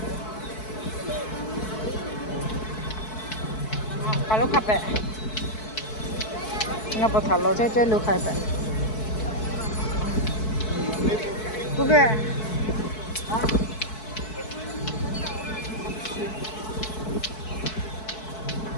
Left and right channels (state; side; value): late; right; 4.6 ms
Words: Kalau kape, ngapa kalau saya lu kape. Bukan.